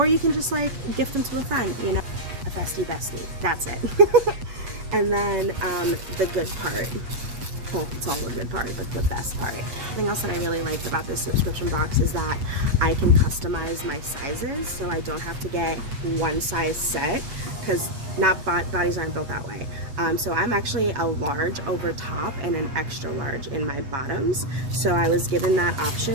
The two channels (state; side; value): late; left; 8.1 ms